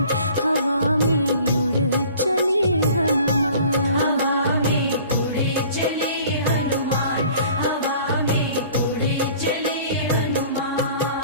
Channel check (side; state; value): both; inverted; correlation -0.49